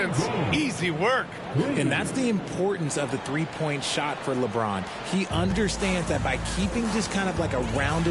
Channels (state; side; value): identical; both; correlation 1.00